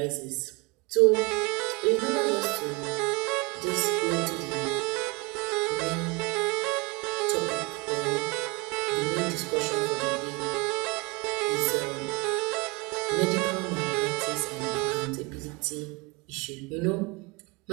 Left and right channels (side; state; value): left; quieter; 26.7 dB